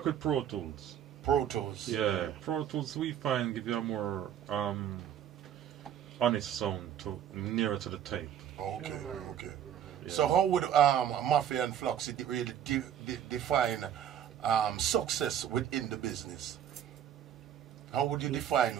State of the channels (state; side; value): quieter; left; 9.8 dB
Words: with Pro Tools. Pro Tools. Yeah, Pro Tools we find give you a more honest sound nearer to the tape. Okay. Yeah. So how would Mafia and Fluxy really define success within the business? How would you define?